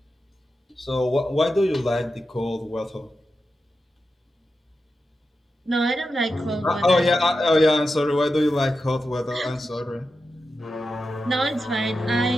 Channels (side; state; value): both; normal; correlation 0.90